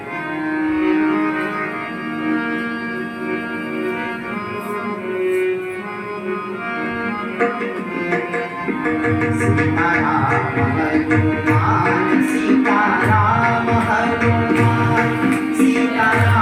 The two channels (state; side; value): identical; both; correlation 1.00